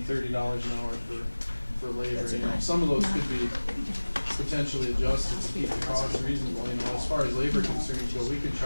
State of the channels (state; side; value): inverted; both; correlation -1.00